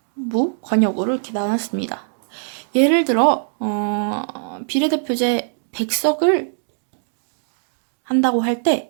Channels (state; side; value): silent; left; digital silence